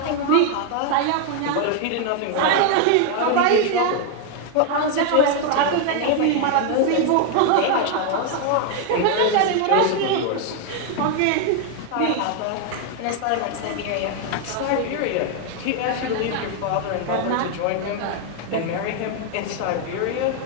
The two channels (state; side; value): different; both; correlation 0.00